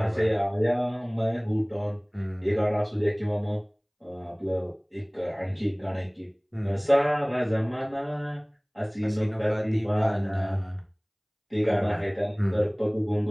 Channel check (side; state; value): both; identical; correlation 1.00